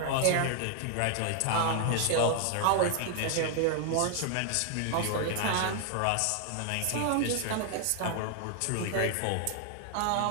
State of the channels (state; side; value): different; both; correlation 0.00